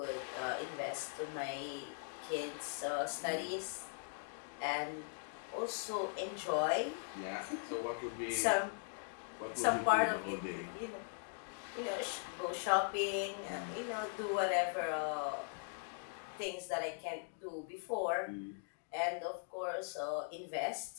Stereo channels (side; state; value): right; silent; digital silence